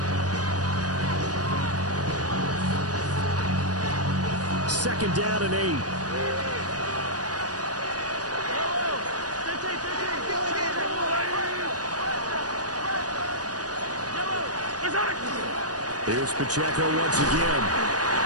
Second down and 8. Here's Pacheco once again.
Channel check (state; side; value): late; left; 0.68 ms